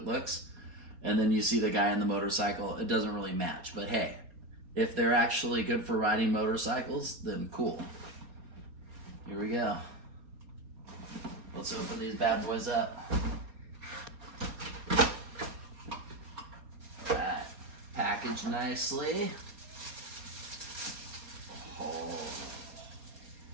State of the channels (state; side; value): late; left; 4.3 ms